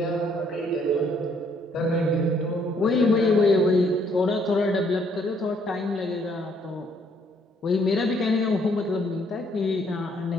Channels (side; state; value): both; normal; correlation 0.67